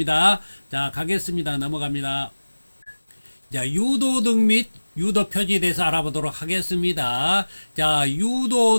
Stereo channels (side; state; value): both; inverted; correlation -1.00